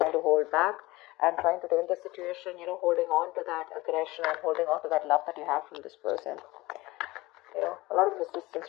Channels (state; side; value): quieter; right; 20.2 dB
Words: to hold back and trying to tame the situation, holding on to that aggression and holding on to that love that you have from this person. A lot of resistance